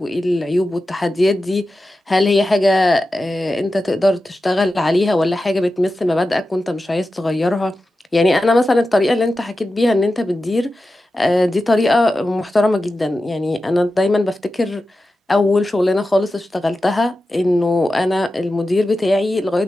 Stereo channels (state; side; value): normal; both; correlation 0.92